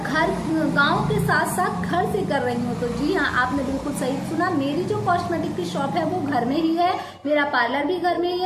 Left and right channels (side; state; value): both; identical; correlation 1.00